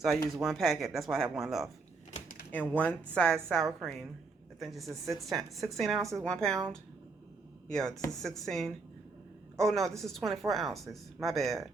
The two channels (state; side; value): quieter; left; 4.2 dB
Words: I use 1 packet, that's why I have 1 left. And 1 size sour cream. I think this is 16 ounces, 1 pound. Yeah, this is 16. Oh no, this is 24 ounces. My bad.